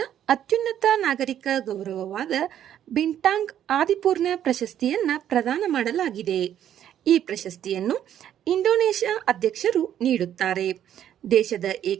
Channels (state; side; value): quieter; left; 10.5 dB